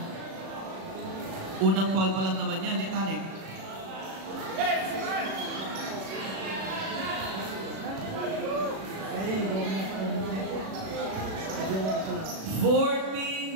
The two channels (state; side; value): late; left; 36 ms